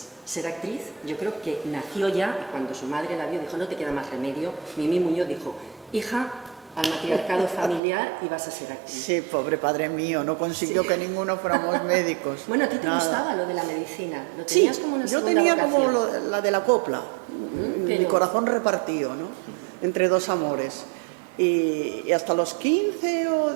ser actriz, yo creo que nació ya, y cuando su madre la vio dijo, no te queda más remedio, Mimi Muñoz dijo, hija, al matriarcado familiar y vas a ser actriz. Sí, pobre padre mío, no consiguió que ninguno fuéramos médicos. Bueno, ¿a ti te Nada. gustaba lo de la medicina? ¿Lo Sí, tenías como una yo segunda tenía vocación? como la de la copla, mi pero- corazón repartido, ¿no? Entre dos amores. Y hasta los 15 o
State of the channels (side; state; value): left; drops out; at 7.8 s